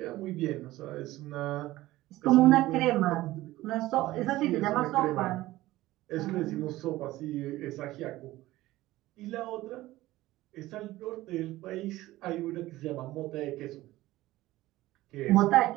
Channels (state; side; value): quieter; left; 17.0 dB